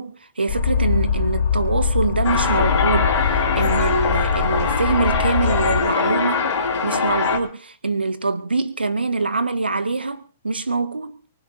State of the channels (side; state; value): both; inverted; correlation -0.58